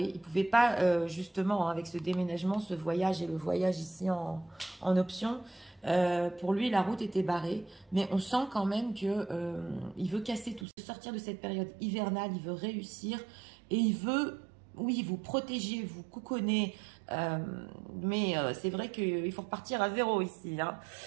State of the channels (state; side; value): drops out; left; at 10.7 s